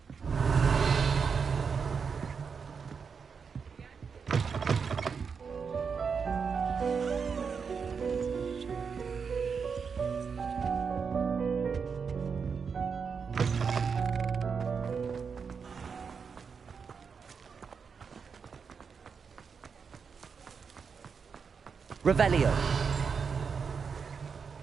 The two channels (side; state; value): left; quieter; 5.9 dB